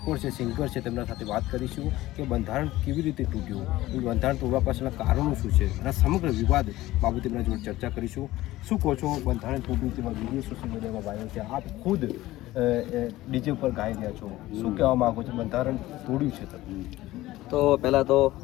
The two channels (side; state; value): right; quieter; 16.8 dB